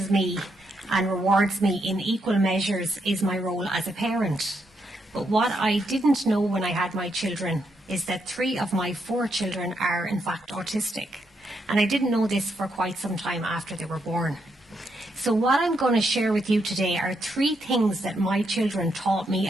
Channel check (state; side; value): normal; both; correlation 0.79